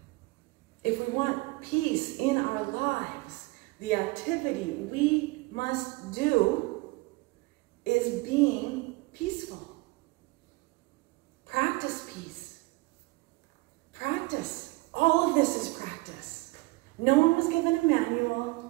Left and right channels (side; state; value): left; quieter; 23.8 dB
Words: If we want peace in our lives, the activity we must do is being peaceful. Practice peace. Practice. All of this is practice. No one was given a